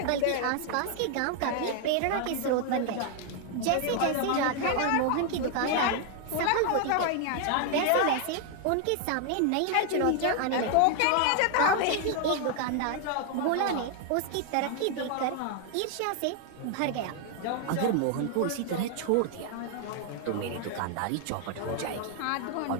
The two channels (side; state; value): both; different; correlation 0.00